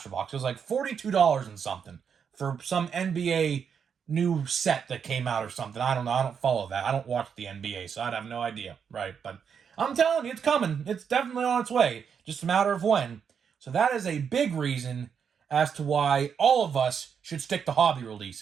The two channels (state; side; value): quieter; left; 7.1 dB